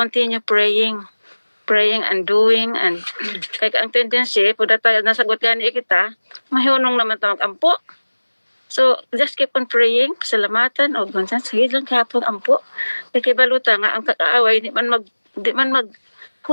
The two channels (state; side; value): inverted; both; correlation -1.00